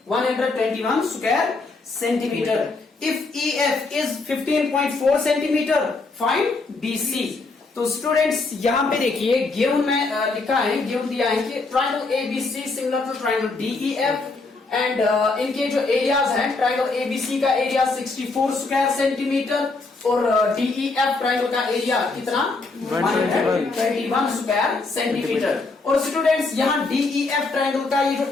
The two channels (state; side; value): quieter; right; 3.7 dB